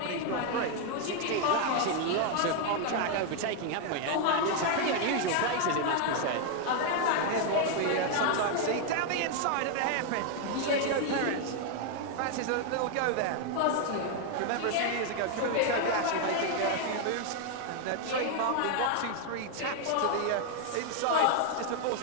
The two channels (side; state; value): both; different; correlation 0.00